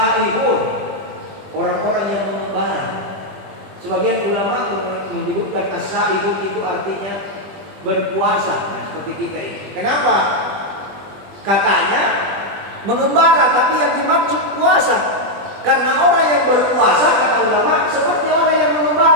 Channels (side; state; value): left; late; 20 ms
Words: orang-orang yang mengembara. Sebagian ulama menyebutkan as-saihun itu artinya berpuasa, nah, seperti kita ini. Kenapa? Katanya mengembara, tapi yang dimaksud puasa. Karena orang yang berpuasa, kata ulama, seperti orang yang